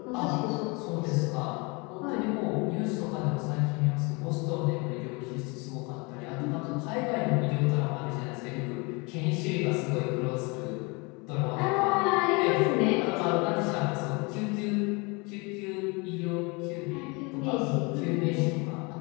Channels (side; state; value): right; quieter; 28.6 dB